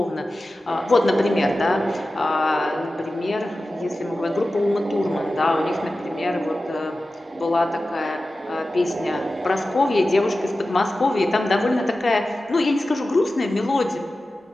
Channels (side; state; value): both; normal; correlation 0.94